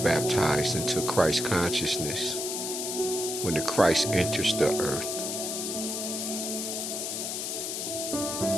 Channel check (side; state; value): left; noise; hiss, 3 dB below the sound